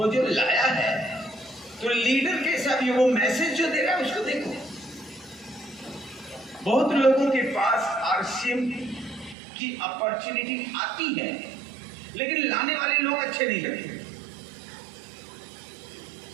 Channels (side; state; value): left; drops out; at 9.3 s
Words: जो लाया है, तो लीडर कैसा भी, वो मैसेज जो दे रहा है उसको देखो। बहुत लोगों के पास आरसीएम की अपॉर्चुनिटी आती है, लेकिन लाने वाले लोग अच्छे नहीं लगते,